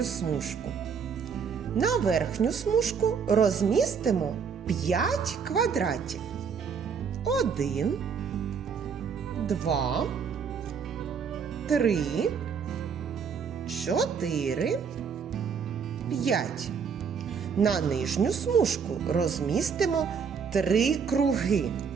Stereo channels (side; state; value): left; quieter; 6.3 dB